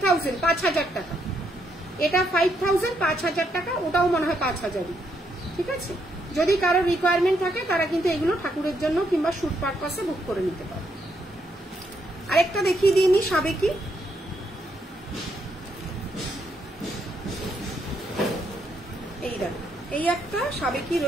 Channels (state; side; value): normal; both; correlation 0.76